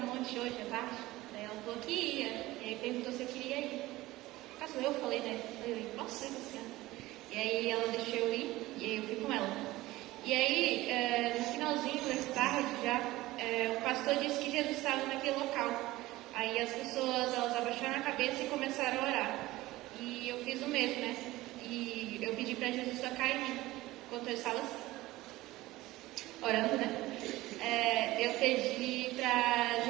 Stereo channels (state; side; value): quieter; left; 18.1 dB